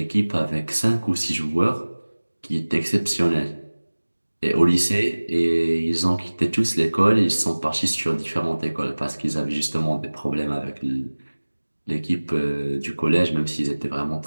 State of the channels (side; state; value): both; inverted; correlation -1.00